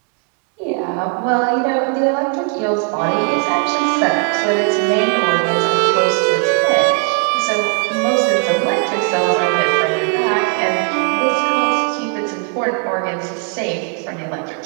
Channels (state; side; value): quieter; left; 38.9 dB